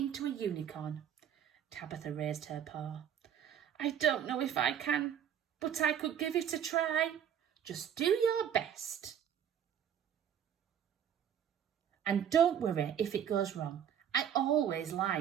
a unicorn?" Tabitha raised her paw. "I don't know if I can, but I could give it a try." "Just do your best. And don't worry if it goes wrong. I always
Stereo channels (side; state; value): left; quieter; 9.1 dB